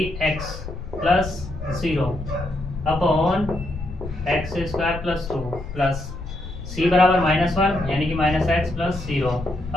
x plus 0 upon X square plus 2 plus c बराबर माइनस 1 यानी कि minus x plus 0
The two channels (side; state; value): left; noise; rumble, 10 dB below the sound